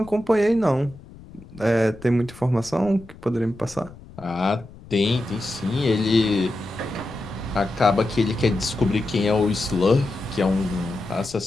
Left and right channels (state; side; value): noise; left; rumble, 20 dB below the sound